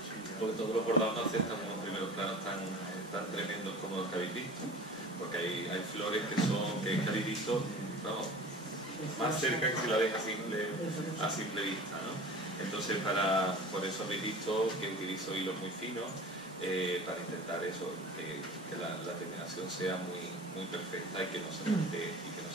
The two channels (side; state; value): both; normal; correlation 0.39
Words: porque todos los bordados no aceptan unos primeros planos tan tremendos como los que habéis visto, porque hay flores que habéis visto, vamos, más cerca que si la ves a simple vista, ¿no? Entonces por eso habéis visto que utilizo hilos muy finos para intentar eso, que la terminación sea muy perfecta y que no se